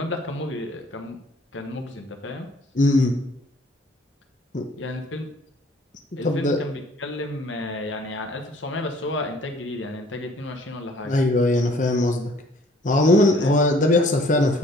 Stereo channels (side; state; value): both; normal; correlation 0.56